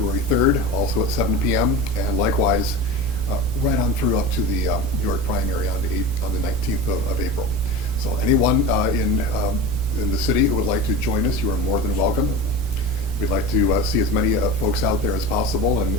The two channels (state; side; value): noise; right; rumble, 8 dB below the sound